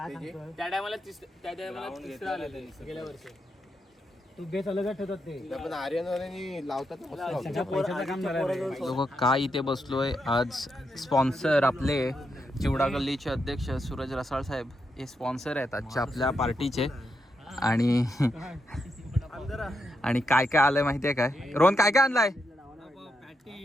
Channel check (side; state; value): both; normal; correlation 0.82